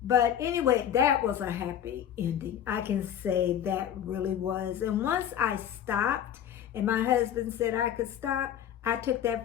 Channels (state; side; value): quieter; right; 9.8 dB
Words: But anyway, that was a happy ending. I can say that really was. And once I stopped and my husband said I could stop, I took